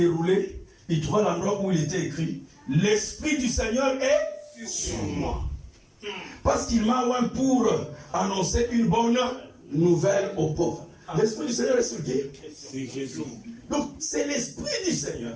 il trouva l'endroit où il était écrit « L'Esprit du Seigneur est sur moi. Parce qu'il m'a oint pour annoncer une bonne nouvelle aux pauvres. » L'Esprit du Seigneur est sur qui? C'est Jésus. Donc c'est l'Esprit du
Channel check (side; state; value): both; identical; correlation 1.00